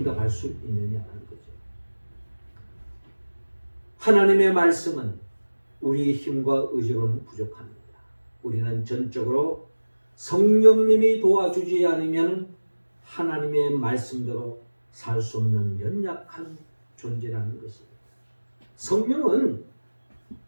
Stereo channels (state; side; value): inverted; both; correlation -1.00